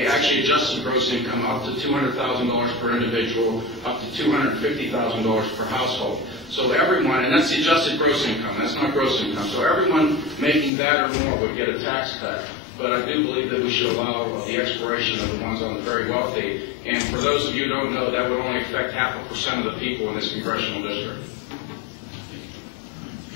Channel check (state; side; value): drops out; right; at 10.7 s